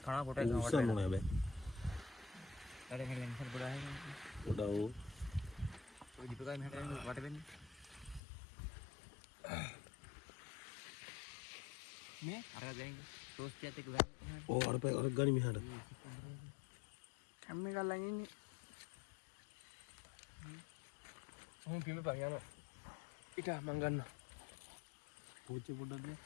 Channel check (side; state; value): right; drops out; at 8.2 s